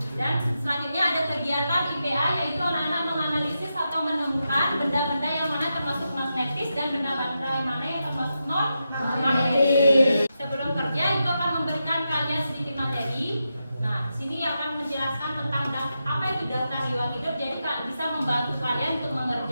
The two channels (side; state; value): both; inverted; correlation -0.88